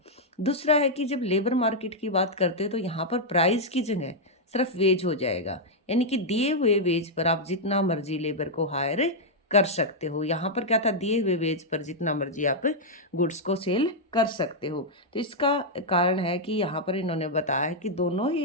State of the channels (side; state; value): both; normal; correlation -0.04